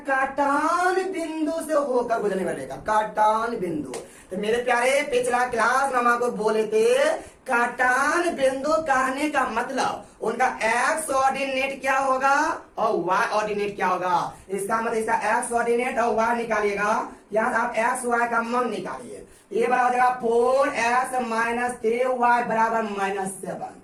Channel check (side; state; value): both; identical; correlation 1.00